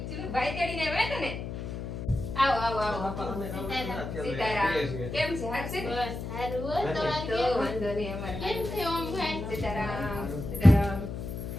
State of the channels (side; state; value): left; noise; hum, 6 dB below the sound